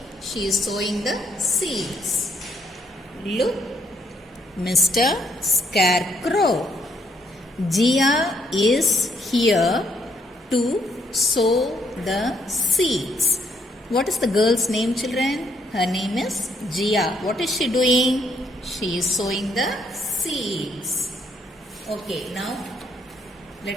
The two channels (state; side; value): normal; both; correlation 0.71